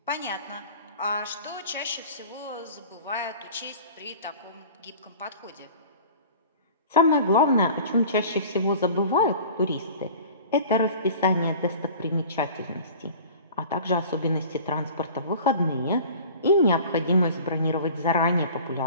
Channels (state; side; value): inverted; both; correlation -0.43